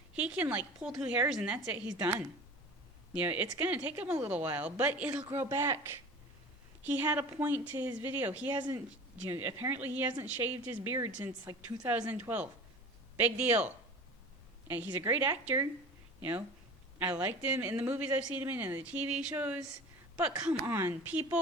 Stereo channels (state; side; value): normal; both; correlation 0.37